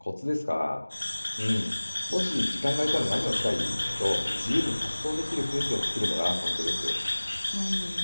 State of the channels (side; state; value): both; inverted; correlation -1.00